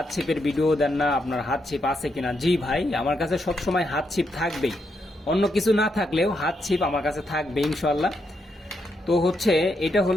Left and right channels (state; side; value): normal; both; correlation 0.80